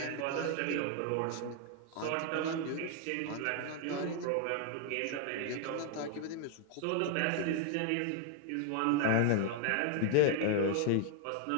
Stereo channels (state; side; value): different; both; correlation 0.00